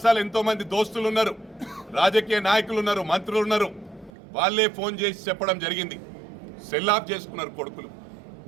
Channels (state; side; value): drops out; left; at 4.1 s